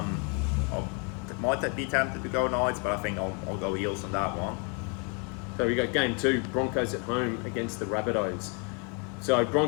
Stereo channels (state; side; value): quieter; right; 35.2 dB